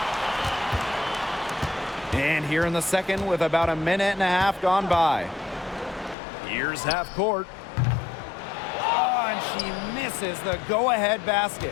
And here in the second with about a minute and a half gone by. Here's half court. Oh, and she misses the go-ahead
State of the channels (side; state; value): right; drops out; at 6.2 s